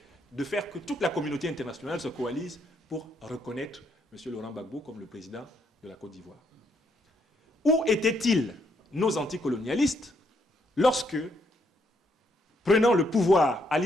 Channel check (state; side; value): normal; both; correlation 0.73